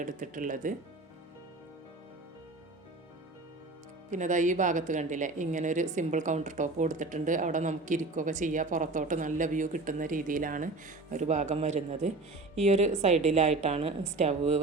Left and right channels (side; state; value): left; quieter; 3.3 dB